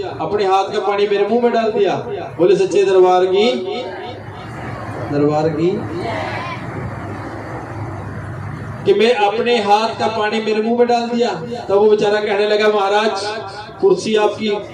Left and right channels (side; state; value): both; identical; correlation 1.00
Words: अपने हाथ का पानी मेरे मुंह में डाल दिया। बोले सच्चे दरबार की। कि मैं अपने हाथ का पानी मेरे मुंह में डाल दिया। तब वो बेचारा कहने लगा महाराज कुर्सी आपकी,